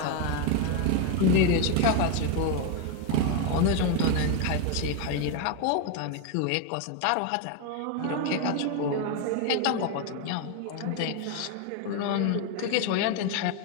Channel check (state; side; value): different; both; correlation 0.01